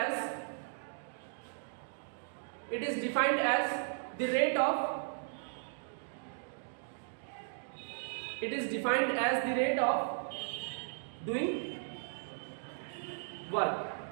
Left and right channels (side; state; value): left; silent; digital silence